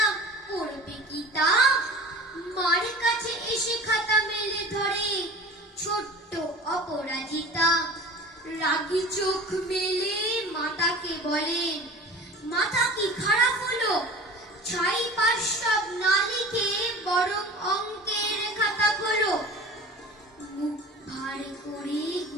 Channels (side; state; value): both; normal; correlation 0.39